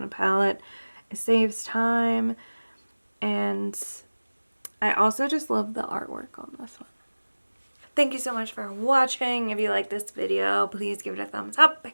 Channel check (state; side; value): inverted; both; correlation -1.00